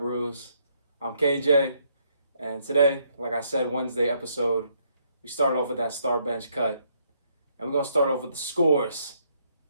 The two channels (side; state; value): both; inverted; correlation -0.72